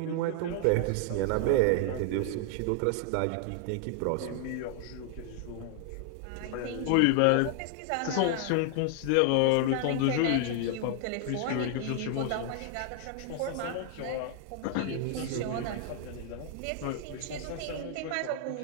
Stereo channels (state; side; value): different; both; correlation 0.00